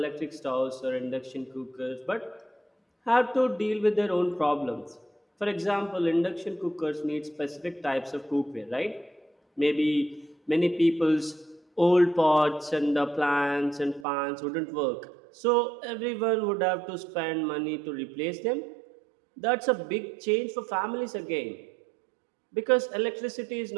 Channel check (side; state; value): left; drops out; at 14.1 s